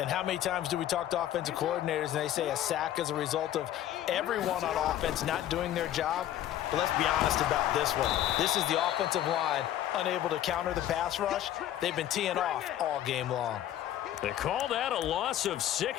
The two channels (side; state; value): right; quieter; 12.2 dB